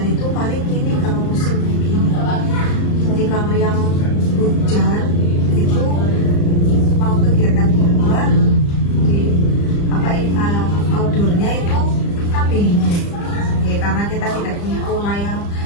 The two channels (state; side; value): late; right; 35 ms